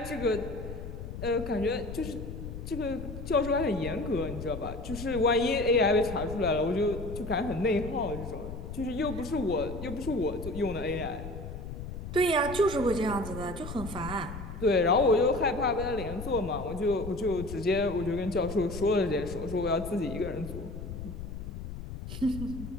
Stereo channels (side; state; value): left; noise; rumble, 9 dB below the sound